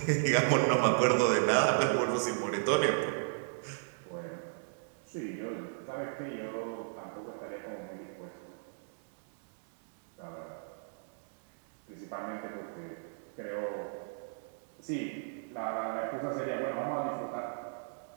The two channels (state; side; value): silent; left; digital silence